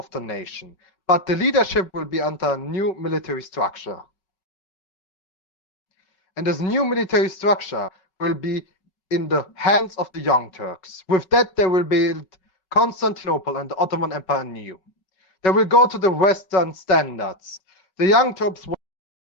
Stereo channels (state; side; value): late; right; 5.3 ms